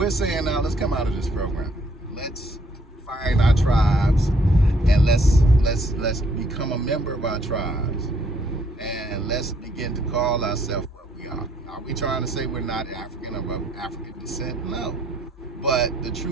saying now, let's come out of this program. Let's find our tribes, and let's become a member of our tribes, and let's begin to call ourselves what we are. Are we trying to say we're not African or of African descent? No. But the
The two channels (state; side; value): normal; both; correlation 0.66